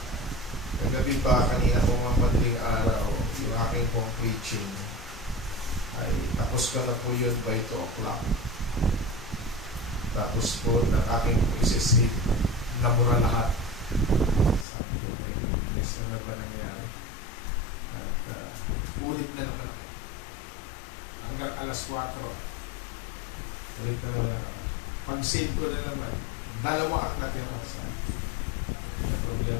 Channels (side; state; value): right; drops out; at 14.7 s